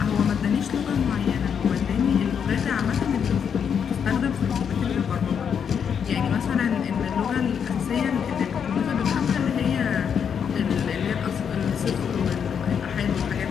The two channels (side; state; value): right; quieter; 7.4 dB